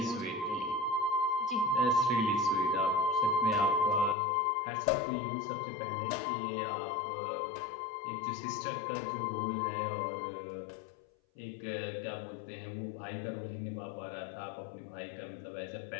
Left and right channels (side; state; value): right; drops out; at 4.2 s